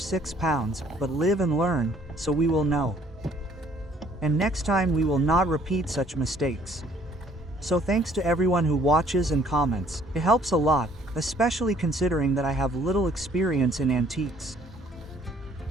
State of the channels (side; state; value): both; normal; correlation 0.60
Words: but live and learn, so we will know. And next time we will not repeat such mistakes. So thanks to everyone who watches and comments. It helps a lot, especially considering that I have little experience in antiques.